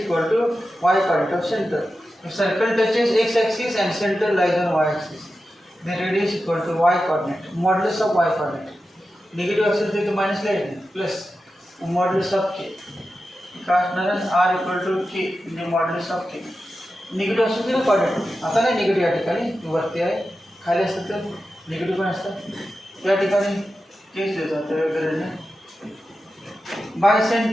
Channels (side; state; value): both; normal; correlation 0.92